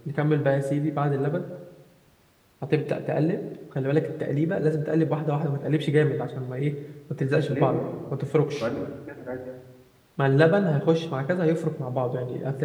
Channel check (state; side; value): identical; both; correlation 1.00